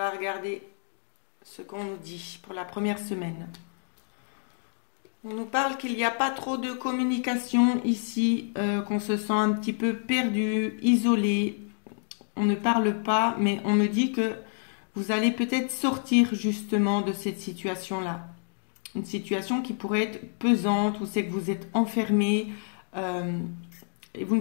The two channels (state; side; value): silent; right; 59 dB below the other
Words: regarder ce qu'on nous dit pour la première semaine. On nous parle qu'il n'y a pas trop de communication ici, qu'on se sent un petit peu perdu, isolé. On ne parle pas, mais on me dit que vous allez peut-être sortir justement de cette situation-là. Une situation qui pourrait être pesante, où c'est que vous êtes enfermé, et vous